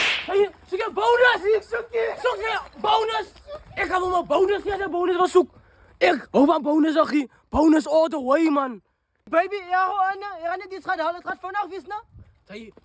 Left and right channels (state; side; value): identical; both; correlation 1.00